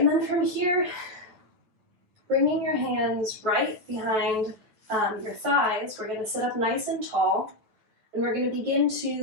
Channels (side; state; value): left; late; 9.2 ms